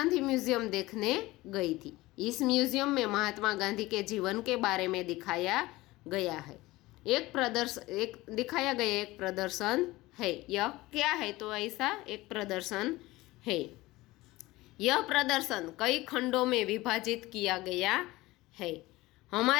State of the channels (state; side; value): quieter; right; 19.3 dB